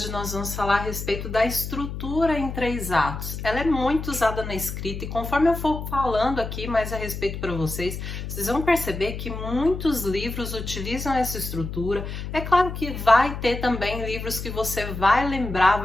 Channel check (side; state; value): left; noise; hum, 7 dB below the sound